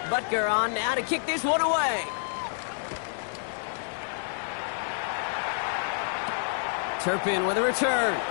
Butker on now to kick this one away. Turpin with a return.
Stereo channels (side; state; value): right; silent; digital silence